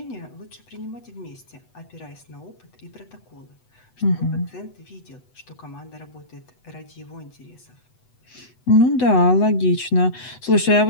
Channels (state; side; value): late; right; 8.0 ms